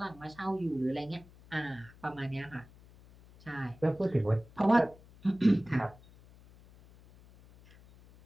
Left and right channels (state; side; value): noise; left; hum, 23 dB below the sound